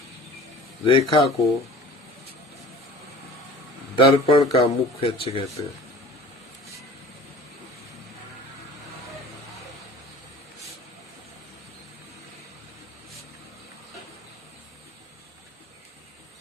को दर्पण का मुख्य अक्ष कहते हैं।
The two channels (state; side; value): normal; both; correlation 0.43